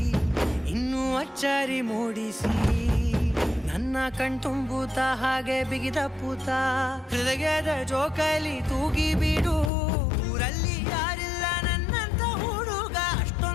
ಇನ್ನೂ ಅಚ್ಚರಿ ಮೂಡಿಸಿ, ನನ್ನ ಕಣ್ತುಂಬುತ್ತ ಹಾಗೆ ಬಿಗಿದ ಪೂತ ಹೃದಯದ ಜೋಕಾಲಿ ತೂಗಿ ಬಿಡು. ಊರಲ್ಲಿ ಯಾರಿಲ್ಲ ನನ್ನಂತ ಹುಡುಗ,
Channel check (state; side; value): drops out; right; at 9.7 s